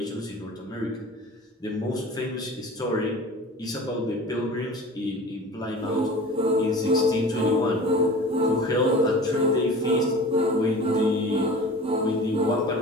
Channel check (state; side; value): normal; both; correlation 0.39